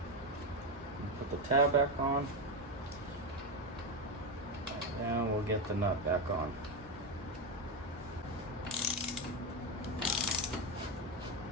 tab back on. And we'll get the nut back on.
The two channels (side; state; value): both; normal; correlation 0.10